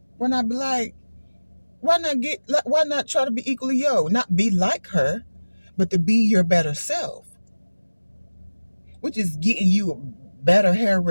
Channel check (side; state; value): both; inverted; correlation -1.00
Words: why not be like, why not try to be equally not be like her, but to be your better self, which is getting you a better hair